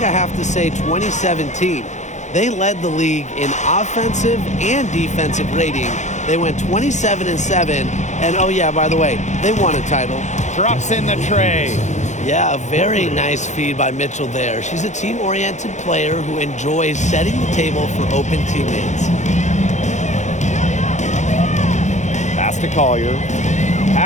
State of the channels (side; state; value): right; late; 0.34 ms